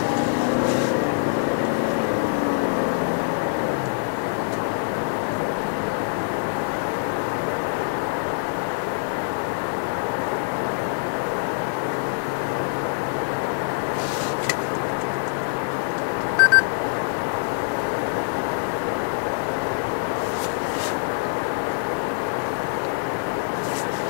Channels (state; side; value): silent; right; digital silence